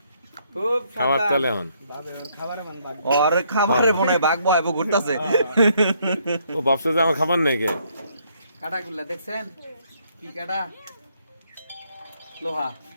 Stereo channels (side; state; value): both; inverted; correlation -0.70